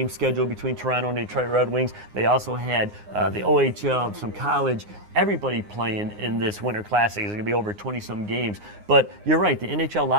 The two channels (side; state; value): left; late; 9.7 ms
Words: scheduled between Toronto and Detroit Red Wings. They also had the OHL, some college, everybody playing in this Winter Classic. It's going to be over 20-some games. But you're right, the NHL